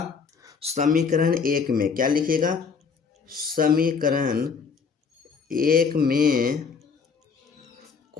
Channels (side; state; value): right; quieter; 5.7 dB